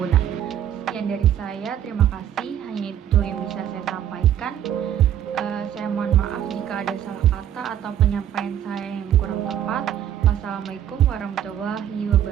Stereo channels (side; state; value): left; quieter; 10.5 dB